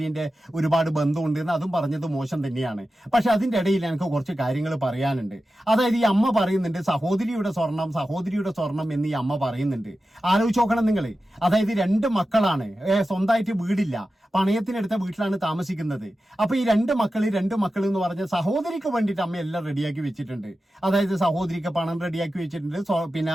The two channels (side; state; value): both; normal; correlation 0.93